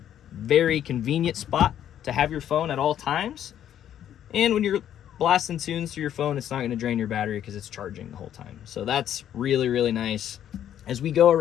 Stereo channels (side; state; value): right; quieter; 10.5 dB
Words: very convenient spot to have your phone at all times. And when you're blasting tunes through your phone, it's not going to drain your battery because it's charging the whole time. So that's really, really nice. As we go